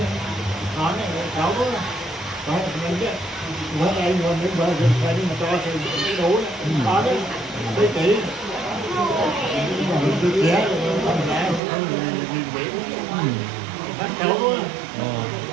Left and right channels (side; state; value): left; drops out; at 11.6 s